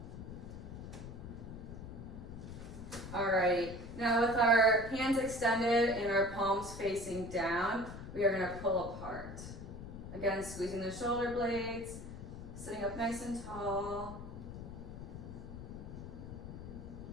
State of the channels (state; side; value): noise; left; rumble, 10 dB below the sound